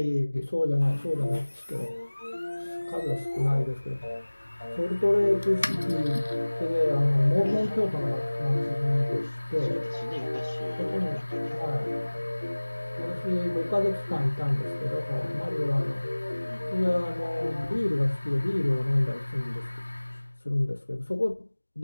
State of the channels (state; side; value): inverted; both; correlation -1.00